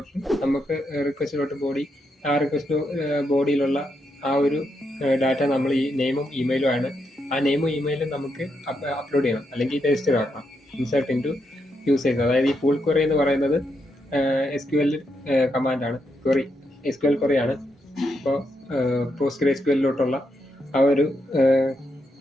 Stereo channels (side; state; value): both; normal; correlation 0.81